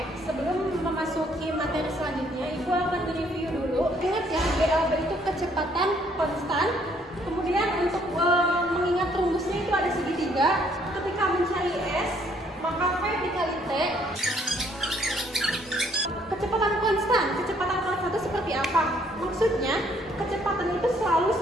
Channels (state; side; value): normal; both; correlation 0.65